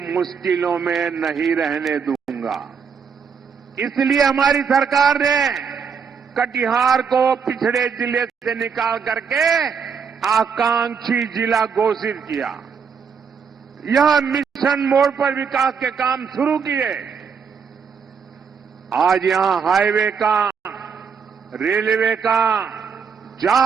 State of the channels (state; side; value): quieter; left; 6.3 dB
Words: मुश्किलों में नहीं रहने दूंगा। इसलिए हमारी सरकार ने कटिहार को पिछड़े जिले से निकाल करके आकांक्षी जिला घोषित किया। यह मिशन मोड पर विकास के काम शुरू किए। आज यहां हाईवे का, रेलवे का